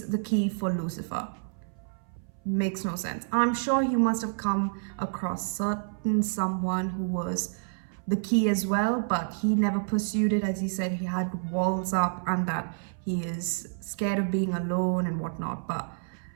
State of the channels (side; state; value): left; silent; 59 dB below the other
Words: the key for Lucifer makes no sense. I'm sure he must have come across someone who was the key as well, but he never pursued it. As he said, he had walls up and that he is scared of being alone and whatnot. But